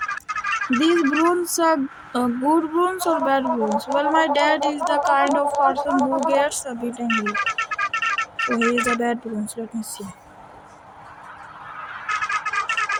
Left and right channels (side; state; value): both; identical; correlation 1.00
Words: These brooms are good brooms or bad brooms? Well, my dad is the kind of person who gets a bit angry. So he is a bad brooms. Let me see.